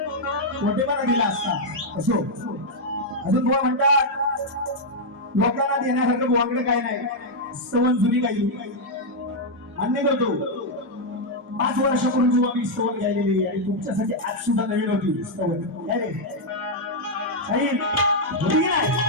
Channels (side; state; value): both; normal; correlation -0.02